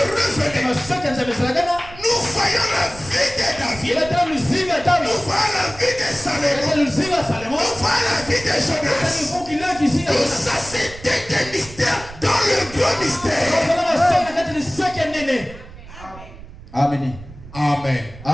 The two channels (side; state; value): right; noise; rumble, 17 dB below the sound